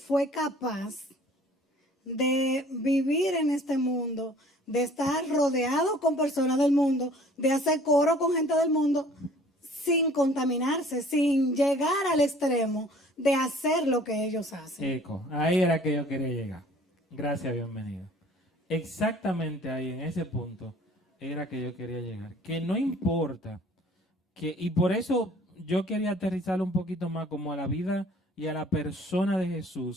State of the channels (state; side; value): normal; both; correlation 0.53